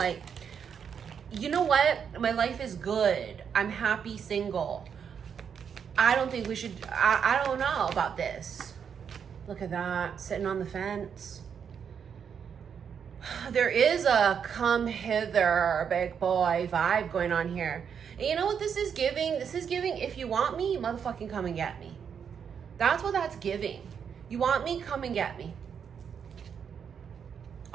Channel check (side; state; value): left; quieter; 7.3 dB